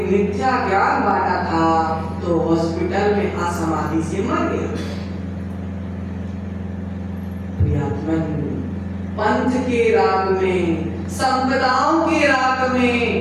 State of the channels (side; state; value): both; identical; correlation 1.00